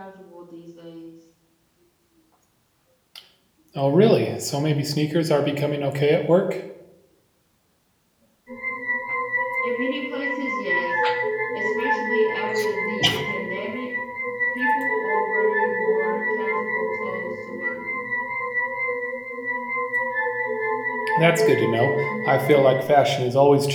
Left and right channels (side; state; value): both; identical; correlation 1.00